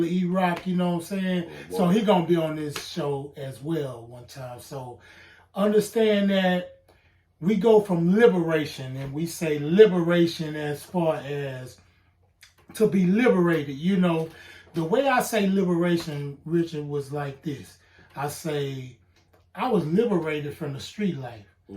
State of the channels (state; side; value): identical; both; correlation 1.00